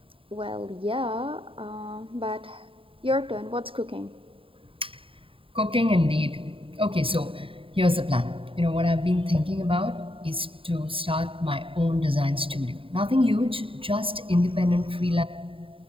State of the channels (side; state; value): left; late; 0.26 ms